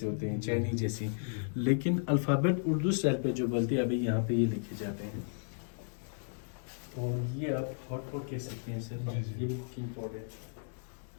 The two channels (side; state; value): right; silent; digital silence